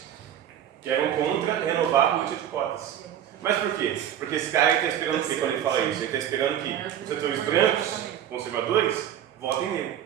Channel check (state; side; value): quieter; left; 10.3 dB